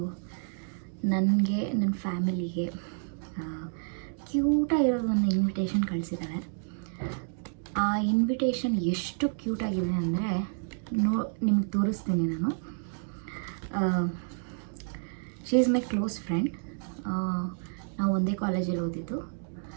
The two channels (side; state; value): left; silent; digital silence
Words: ನನಗೆ ನನ್ನ ಫ್ಯಾಮಿಲಿಗೆ ಕ್ಯೂಟಾಗಿರೋದು ಒಂದು ಇನ್ವಿಟೇಷನ್ ಕಳಿಸಿದ್ದಾಳೆ. ಆ ಇನ್ವಿಟೇಷನ್ ಎಷ್ಟು ಕ್ಯೂಟಾಗಿದೆ ಅಂದರೆ ನಿಮ್ಗೆ ತೋರಿಸ್ತೀನಿ ನಾನು. She is my close friend. ನಾವು ಒಂದೇ ಕಾಲೇಜಲ್ಲಿ ಓದಿದ್ದು.